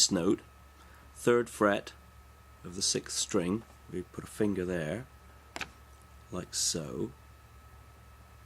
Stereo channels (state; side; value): identical; both; correlation 1.00